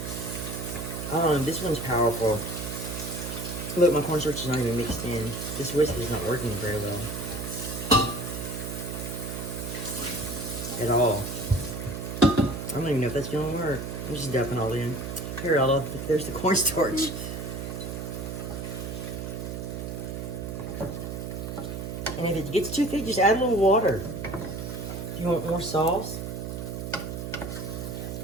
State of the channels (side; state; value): right; noise; hum, 5 dB below the sound